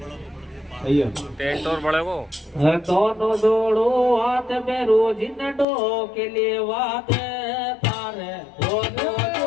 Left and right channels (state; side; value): drops out; right; at 5.7 s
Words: टेंट और बड़े को दोनों जोड़ो हाथ में रोज नडो के लिए वाद तारे दोनों